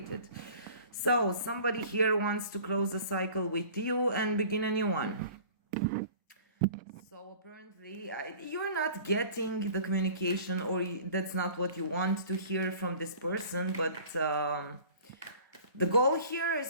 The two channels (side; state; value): both; inverted; correlation -0.45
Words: So, somebody here wants to close a cycle with you and begin a new one. So, apparently, you're not getting the communication, or that's not what you want to hear from this person, but the goal here